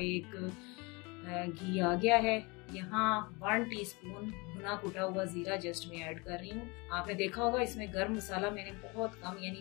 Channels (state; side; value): quieter; right; 27.3 dB